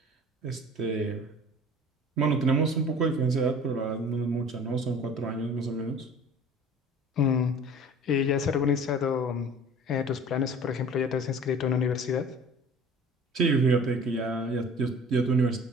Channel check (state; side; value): normal; both; correlation 0.45